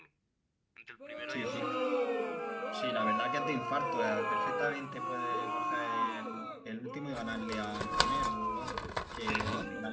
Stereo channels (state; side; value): identical; both; correlation 1.00